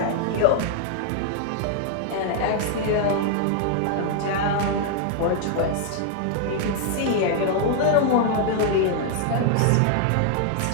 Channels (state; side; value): different; both; correlation 0.00